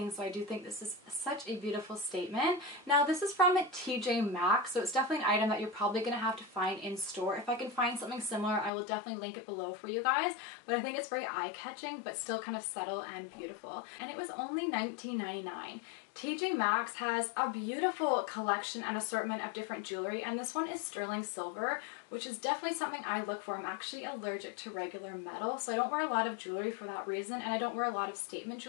so I do think this is such a beautiful statement. Now this is from TJ Maxx, so it's definitely an item that you're probably going to have to find in store. If I can find something similar, I will definitely link it below for you guys, but I think it's very eye-catching but still kind of subtle and beautiful. And it was only $19.99. TJ Maxx has a beautiful collection and assortment of different jewelry, and this one is sterling silver, which is definitely something I look for. I'm actually allergic to regular metal, so I don't wear a lot of jewelry for that reason, and I don't wear a lot of statement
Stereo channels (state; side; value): drops out; right; at 8.7 s